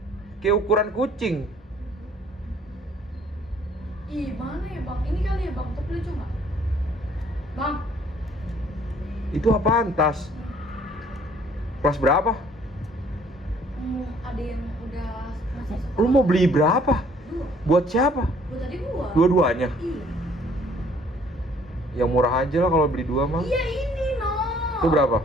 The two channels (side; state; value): both; normal; correlation 0.59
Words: Kayak ukuran kucing. Ih, mana ya bang? Ini kali ya bang, tapi lucu nggak? Bang, Itu apaan tas? Kelas berapa? ada yang udah masih sekolah. Lu mau beli berapa? Dua. Buat siapa? Buat tadi gua. Dua-duanya? Iya. Yang murah aja lah kalau beli dua mah. Iya ini no. Itu berapa?